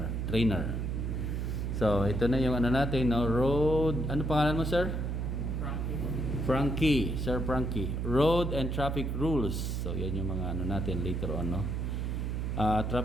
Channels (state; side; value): noise; right; hum, 1 dB below the sound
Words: So, ito na yung ano natin, no? Road, ano pangalan mo, sir? Frankie, Sir Frankie. Road and traffic rules. So, yan yung mga ano natin later on, no?